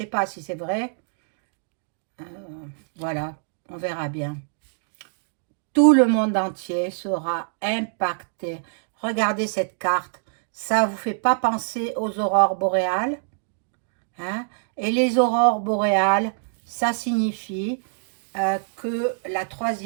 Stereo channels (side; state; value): left; silent; digital silence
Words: pas si c'est vrai. Voilà, on verra bien. Tout le monde entier sera impacté. Regardez cette carte. Ça ne vous fait pas penser aux aurores boréales, hein? Et les aurores boréales, ça signifie que la